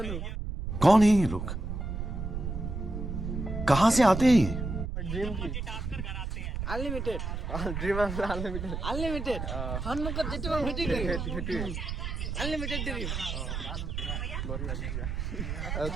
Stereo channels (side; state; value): right; noise; rumble, 4 dB below the sound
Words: कौन है ये लोग कहां से आते हैं ये ড্রিম কি আনলিমিটেড ড্রিম আনলিমিটেড আনলিমিটেড সন্মুখত যেটো হেতু হেতু আনলিমিটেড ড্রিম